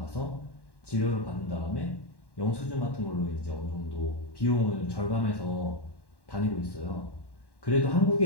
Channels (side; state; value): right; late; 1.1 ms